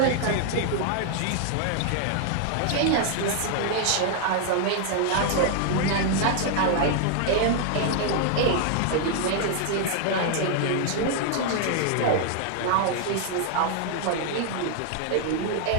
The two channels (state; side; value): different; both; correlation 0.00